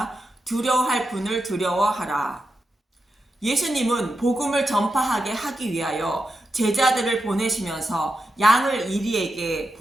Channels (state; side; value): normal; both; correlation 0.88